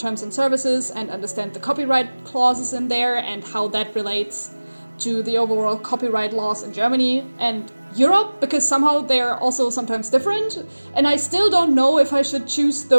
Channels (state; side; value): inverted; both; correlation -1.00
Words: and services and understand the copyright clauses in there and how that relates to the overall copyright laws in Germany and Europe, because somehow they're also sometimes different. And I still don't know if I should choose